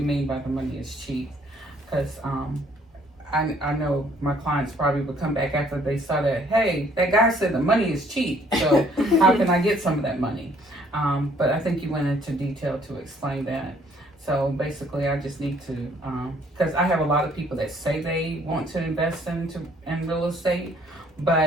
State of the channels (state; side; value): normal; both; correlation 0.62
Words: by the money is cheap? Because I know my clients probably would come back after they saw that, hey, that guy said the money is cheap, so how can I get some of that money? But I think you went into detail to explain that. So basically, I just need to, because I have a lot of people that say they want to invest in real estate,